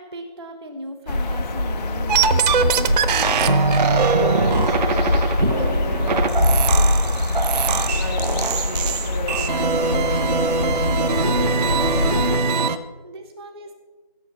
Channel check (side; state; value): both; inverted; correlation -0.42